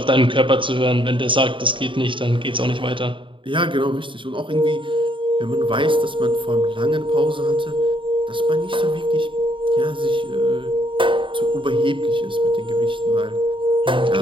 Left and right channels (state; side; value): late; left; 0.24 ms